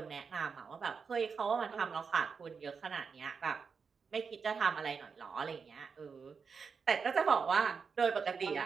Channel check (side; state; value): left; quieter; 5.6 dB